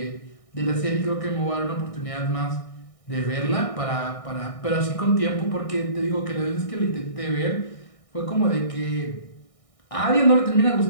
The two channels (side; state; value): right; late; 1.6 ms